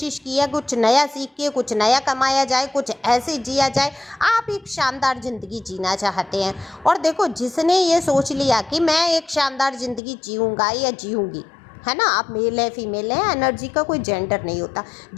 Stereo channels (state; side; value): drops out; right; at 10.0 s